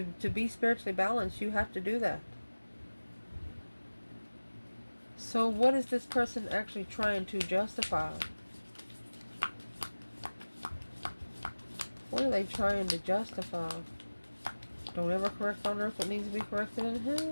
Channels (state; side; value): inverted; both; correlation -1.00